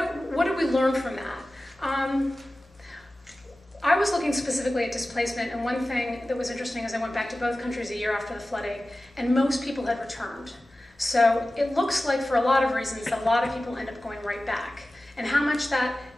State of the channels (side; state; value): both; normal; correlation 0.96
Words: did we learn from that? I was looking specifically at displacement, and one thing that was interesting is I went back to both countries a year after the flooding, and most people had returned. So it looks like, for a lot of reasons, that a lot of people end up going right back. And how much that